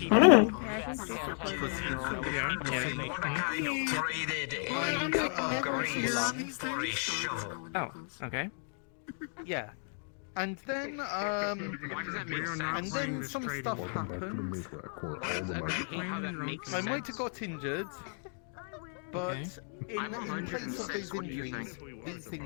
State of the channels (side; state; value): right; silent; 55 dB below the other